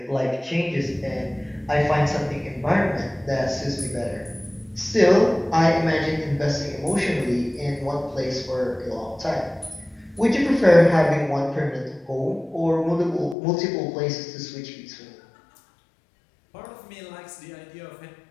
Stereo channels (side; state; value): right; drops out; at 13.4 s